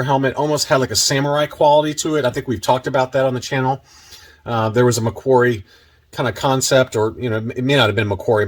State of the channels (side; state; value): both; identical; correlation 1.00